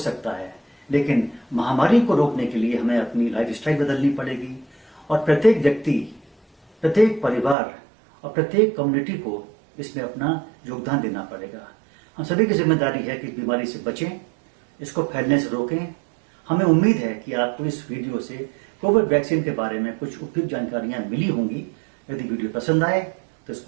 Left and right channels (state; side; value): drops out; left; at 7.6 s